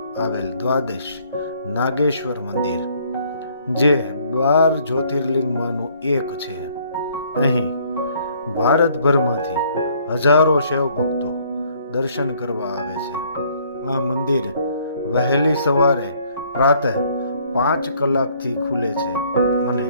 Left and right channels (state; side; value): inverted; both; correlation -0.63